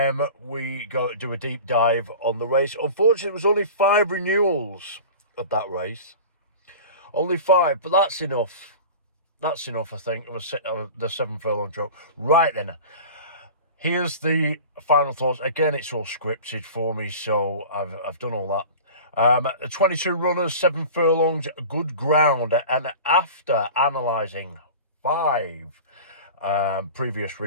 We go to do a deep dive on the race. Unfortunately, it was only 5 renewals of that race. Only 5, but that's enough. That's enough, I think, of the 7 furlong joke. Right then, here's the final thoughts. Again, it's all scripted for me, so I've done all that. 22 runners, 7 furlongs, good ground. And after analysing 5 previous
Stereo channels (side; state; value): both; inverted; correlation -0.36